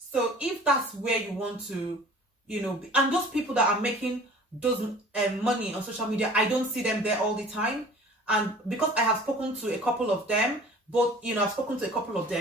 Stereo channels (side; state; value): both; normal; correlation 0.46